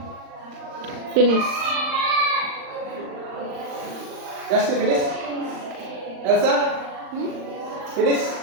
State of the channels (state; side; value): late; left; 39 ms